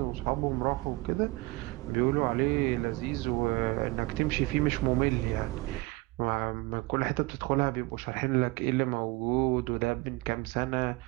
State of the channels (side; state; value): left; quieter; 23.0 dB